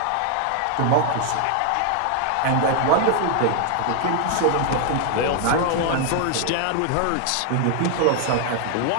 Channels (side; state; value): both; different; correlation 0.00